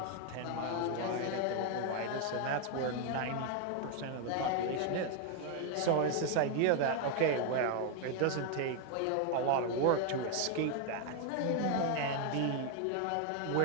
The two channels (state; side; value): different; both; correlation 0.00